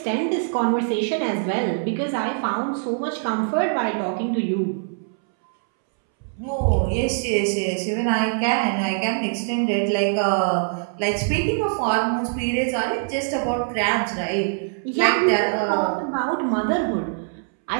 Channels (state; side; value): silent; left; 63 dB below the other